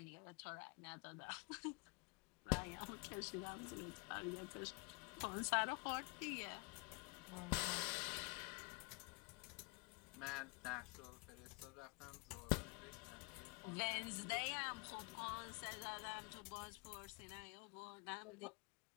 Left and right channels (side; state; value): right; quieter; 29.5 dB